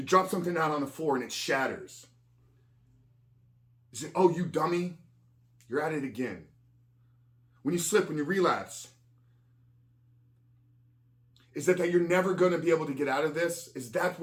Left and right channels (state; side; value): identical; both; correlation 1.00